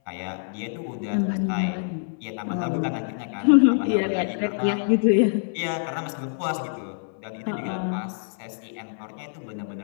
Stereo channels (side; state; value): right; silent; 59 dB below the other